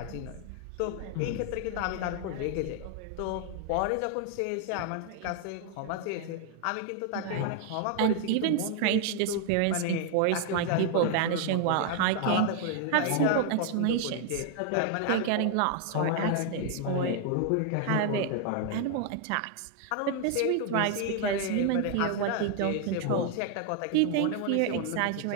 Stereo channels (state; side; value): different; both; correlation 0.00